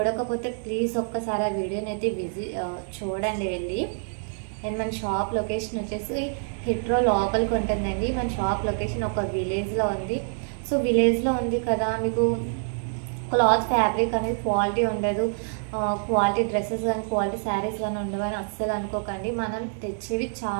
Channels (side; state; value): left; silent; 61 dB below the other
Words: ప్లీజ్ ఒక్కసారి ఆ వీడియోని అయితే చూడండి వెళ్ళి. అండ్ మన షాప్ లొకేషన్ వచ్చేసి హిట్రో లోపలికి ఉంటుందండి. మన షాప్ లొకేషన్ ఒక విలేజ్లో ఉంది. సో విలేజ్లో ఉంది కదా, మీకు క్లాత్ ఫ్యాబ్రిక్ అనేది క్వాలిటీ ఉండదు, క్వాలిటీ డ్రెస్సెస్ కానీ క్వాలిటీ శారీస్ కానీ ఉండవని అస్సలు అనుకోకండి. మనం తెచ్చేవి